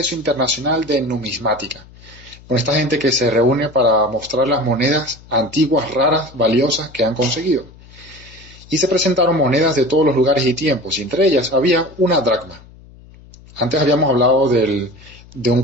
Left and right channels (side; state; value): left; noise; hum, 22 dB below the sound